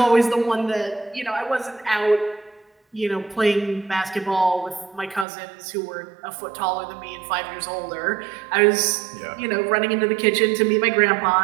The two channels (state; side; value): drops out; left; at 5.2 s